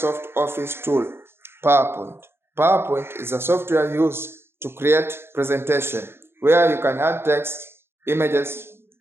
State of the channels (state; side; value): late; left; 0.11 ms